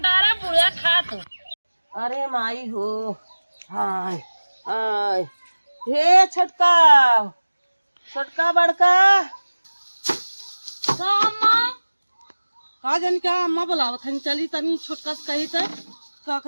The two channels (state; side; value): inverted; both; correlation -1.00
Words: डारा बुढ़ा खा तू। अरे माई हो, हाय हाय, हे छोटका छोटका बड़का तो अम्मा का जन क्या अम्मा बुलावत हन, चली तनी छोटका से कही त का